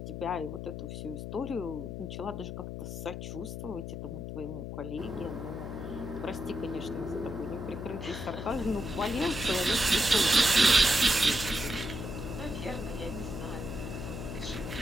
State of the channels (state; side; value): noise; left; hum, 6 dB below the sound